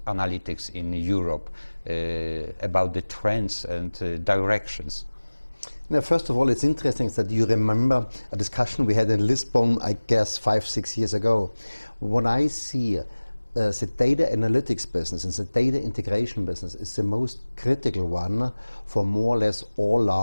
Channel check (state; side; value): inverted; both; correlation -1.00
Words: analytics in Europe, about the trends and directions? Now, first of all, it's interesting that you remember a discussion we had in Lisbon, I guess 5-6 years ago. What I see the data analytics business and the data integration business is the most critical one for more or less all